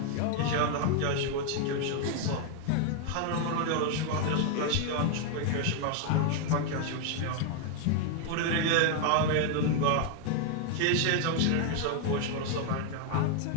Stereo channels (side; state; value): both; different; correlation 0.00